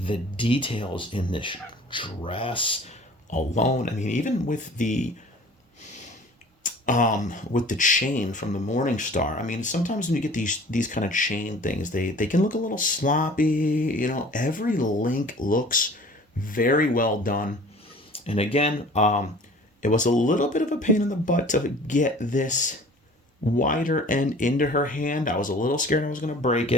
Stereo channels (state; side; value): normal; both; correlation 0.47